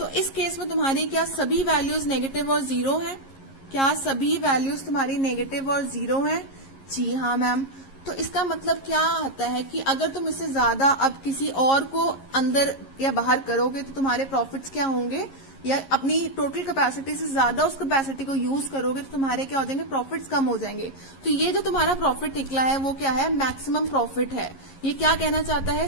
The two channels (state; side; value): late; right; 11 ms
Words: इस केस में तुम्हारी क्या सभी वैल्यूज नेगेटिव और 0 है, क्या सभी वैल्यूज तुम्हारी नेगेटिव और 0 है? जी हाँ मैम। तो इसका मतलब क्या आता है कि अगर तुम इससे ज्यादा अब किसी और को अंदर या बाहर करोगे तो तुम्हारे प्रॉफिट्स क्या होंगे, या अपनी टोटल कैपेसिटी से ज्यादा उस कैपेसिटी को यूज करोगे तो तुम्हारे क्या हो जाएंगे, प्रॉफिट्स कम हो जाएंगे। तो ये जो तुम्हारा प्रॉफिट निकला है वो क्या है, मैक्सिमम प्रॉफिट है। ये क्या कहना चाहता है,